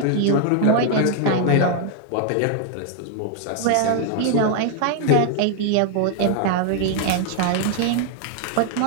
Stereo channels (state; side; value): different; both; correlation 0.00